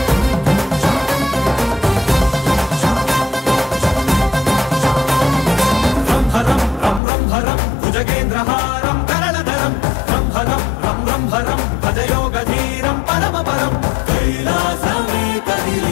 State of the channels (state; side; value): drops out; right; at 7.0 s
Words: భుజగేంద్రహారం కరణధరం రంభరం రం రంభరం భజయోగధీరం పరమపరం కైలాసమే